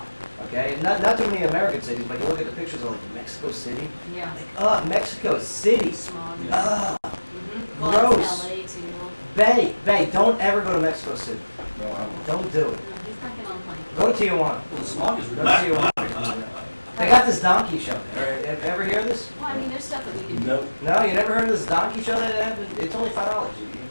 Okay, not too many American cities, but you look at the pictures of like Mexico City. Yeah. Mexico City. Smog. Mm-hmm. Well, Gross. it's LA too. Bay, don't ever go to Mexico City. No, I won't. Don't do it. No, he's not getting on a plane. Go to Tijuana. Well, the smog is Go really to Tijuana. They got this donkey show there. Have you ever heard of this? Well, I mean, there's stuff that we can do. Nope. No, you never heard of this donkey show that happened? It's only $5. You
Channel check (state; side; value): inverted; both; correlation -1.00